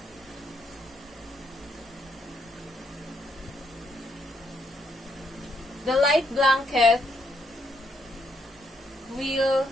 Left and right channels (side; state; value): both; normal; correlation 0.75